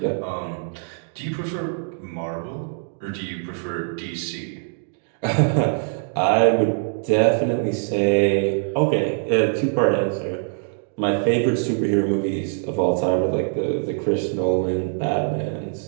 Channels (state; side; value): silent; left; digital silence